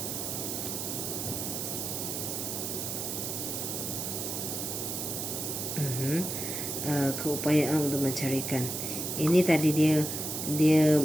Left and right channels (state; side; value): noise; right; hiss, 3 dB below the sound